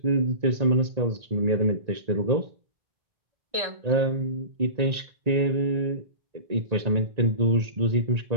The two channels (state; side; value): late; left; 1.9 ms